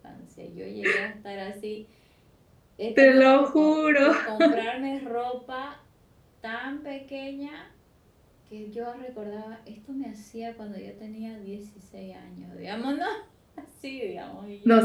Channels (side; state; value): both; identical; correlation 1.00